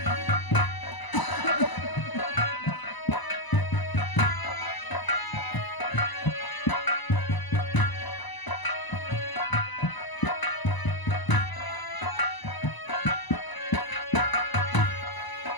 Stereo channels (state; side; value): late; right; 1.0 ms